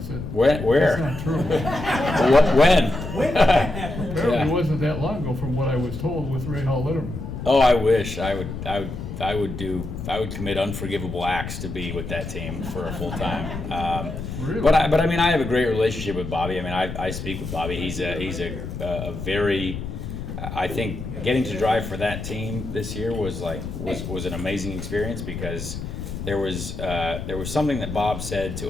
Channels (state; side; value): noise; left; rumble, 7 dB below the sound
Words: Where? That's not true. When? Apparently, it wasn't that long ago, from what I was told, with Rahal Letterman. Oh, I wish I would commit unforgivable acts to be with that team for a full time. Really? But I mean, I have a great relationship with Bobby. I mean, I speak with Bobby. He's a very, I think getting to drive for that team this year was an amazing experience, because there was something that Bob said